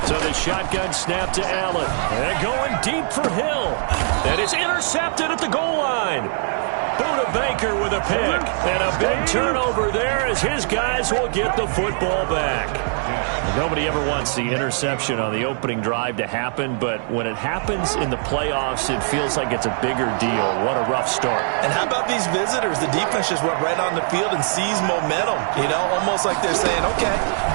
So the shotgun snap to Allen. And going deep for Hill. That is intercepted at the goal line. Buda Baker with a pick. And a big turnover there as his guys will get the football back. Nobody ever wants the interception on the opening drive to happen, but when it happens in the playoffs, it feels like it's a bigger deal. What a rough start. And how about these visitors? The defense just went right on the field and seized momentum. You know, almost like they're saying, okay,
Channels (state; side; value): silent; left; 65 dB below the other